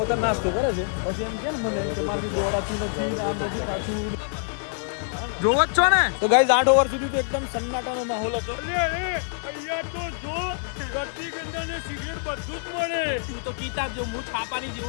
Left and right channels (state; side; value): silent; right; digital silence